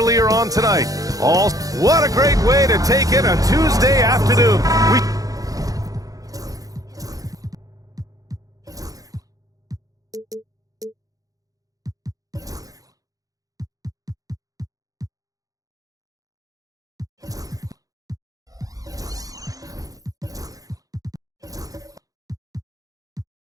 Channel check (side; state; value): left; late; 0.17 ms